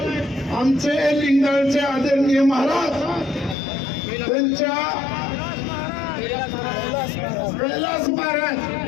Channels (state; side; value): drops out; right; at 3.6 s